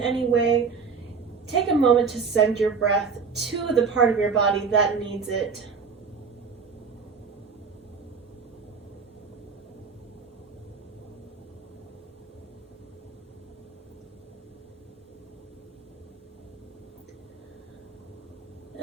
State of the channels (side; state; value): left; quieter; 5.4 dB